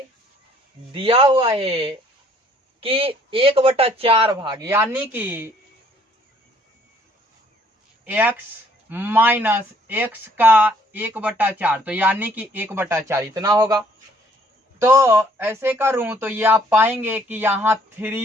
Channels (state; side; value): normal; both; correlation 0.62